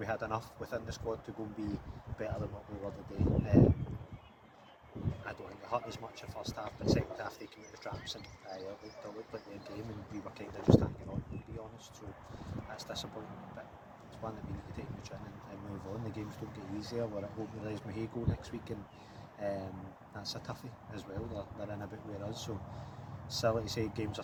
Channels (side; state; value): both; identical; correlation 1.00